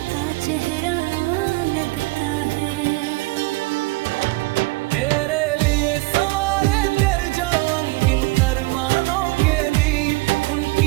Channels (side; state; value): left; quieter; 22.9 dB